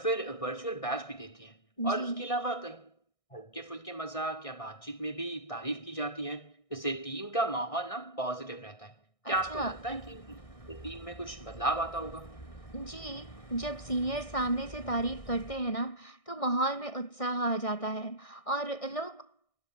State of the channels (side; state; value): right; late; 1.6 ms